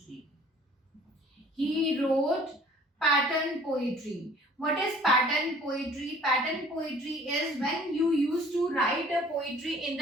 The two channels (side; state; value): both; normal; correlation 0.53